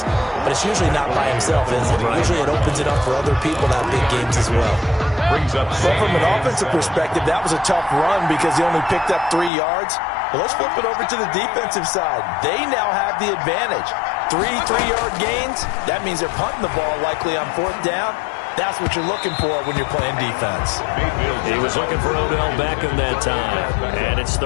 but it's usually not by himself, is it? Right. Usually it opens it up for other people to have big games as well. Brings up but from an offensive perspective, that was a tough run because he only picked up 3 yards. Well, let's flip it over to the defensive side. They now have the advantage. 3 3-yard gains. That means they're punting the ball likely on 4th down. That's what you're looking for when you're playing defense. He was looking for Odell Beckham that time, and it's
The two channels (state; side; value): drops out; right; at 9.5 s